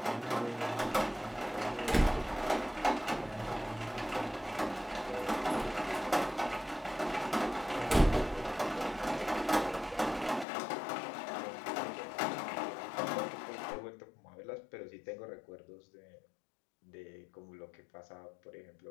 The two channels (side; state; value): right; drops out; at 10.5 s